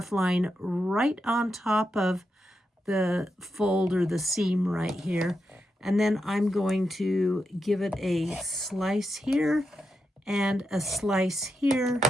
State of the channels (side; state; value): both; normal; correlation 0.86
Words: line right on top of the fold or the seam right here, and then I'm going to give it a slice here and a slice here,